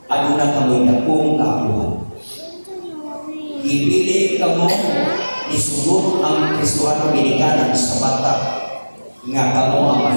aduna kamo'y napong kaapuhan. Ipili kamo isugod ang Kristohanong ginikanan sa bata nga kamo ang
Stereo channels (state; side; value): inverted; both; correlation -1.00